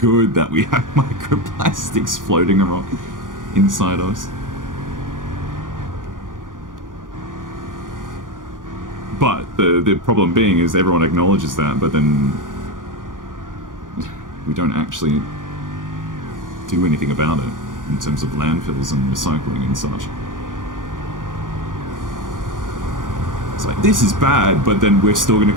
that we have microplastics floating around inside us. But the problem being is everyone acknowledges that, but then we don't actually do anything about it in terms of landfills and recycling and such. It's like, this is bad, but then we're still going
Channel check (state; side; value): late; left; 0.89 ms